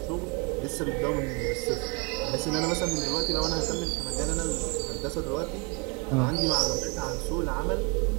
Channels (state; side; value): quieter; left; 31.4 dB